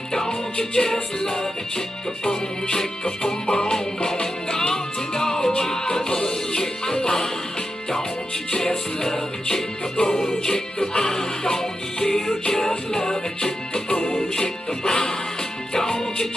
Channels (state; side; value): normal; both; correlation 0.88